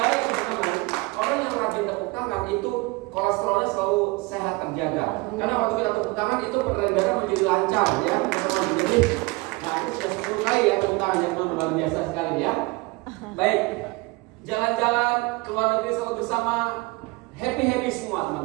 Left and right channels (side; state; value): left; quieter; 24.9 dB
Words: teman-teman, orang yang rajin tepuk tangan itu kolesterolnya selalu sehat terjaga. Karena waktu kita tepuk tangan itu peredaran darah menjadi lancar ya teman-teman. Jadi nah, itu sudah 10 kali ya tepuk tangan ya teman-teman, luar biasa sekali ya. Baik, jalan-jalan ke luar negeri selalu bersama, happy semua